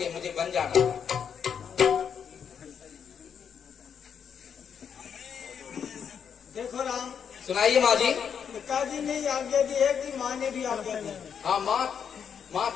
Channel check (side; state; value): right; quieter; 7.5 dB